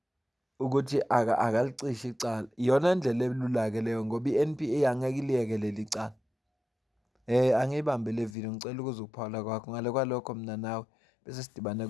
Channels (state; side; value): drops out; right; at 8.3 s